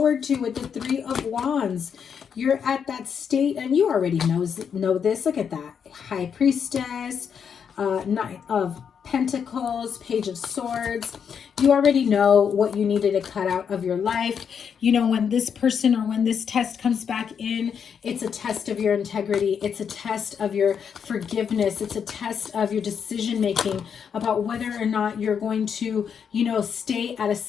to with the Three of Wands. You're at that state, and you already know this. Look at that. High Priestess, Knight of Pentacles, Page of Swords. You already know what you needed to cut out of your life. You know, when this person or when this test comes back in, it's a test of your integrity. It's a test of your forgiveness. It's a test of your decision making about whether or not you're going to, you know, stay at a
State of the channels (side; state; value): right; quieter; 7.2 dB